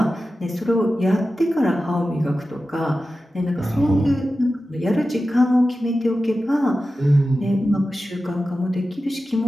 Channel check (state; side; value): normal; both; correlation 0.93